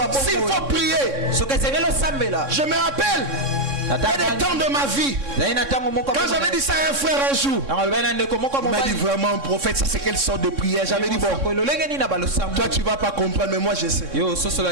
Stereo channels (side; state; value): left; late; 3.6 ms